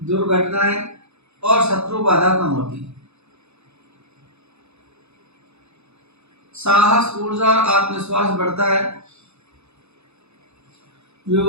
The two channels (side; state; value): left; late; 0.80 ms